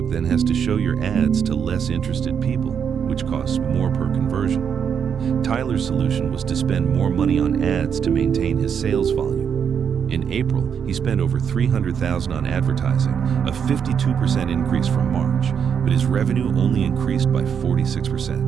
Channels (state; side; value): quieter; left; 7.4 dB